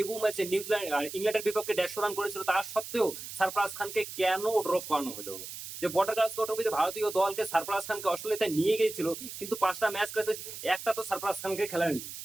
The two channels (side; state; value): right; noise; hiss, 10 dB below the sound